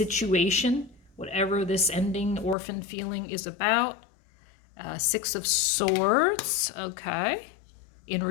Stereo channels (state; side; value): drops out; right; at 2.6 s